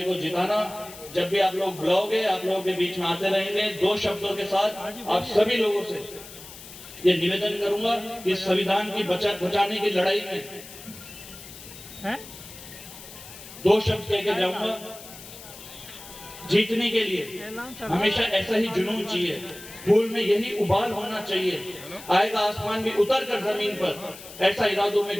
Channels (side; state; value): left; noise; hiss, 16 dB below the sound